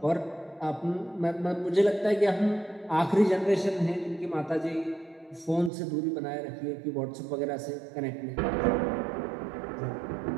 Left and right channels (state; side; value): drops out; left; at 5.7 s